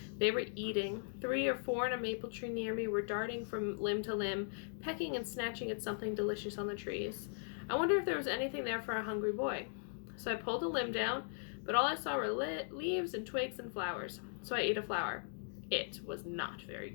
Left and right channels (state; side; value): silent; right; digital silence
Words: They were eating. 3 or 4 in a maple tree near me were darting from limb to limb, pecking and snatching at something delicious on the trees. I wondered if there was anything there for a hungry boy. So I pulled a limb down, but all I saw were leaves and twigs and flowers. So I ate a flower. It was not very